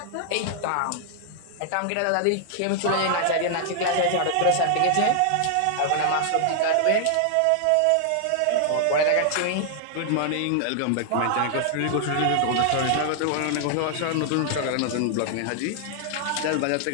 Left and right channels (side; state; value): both; different; correlation 0.00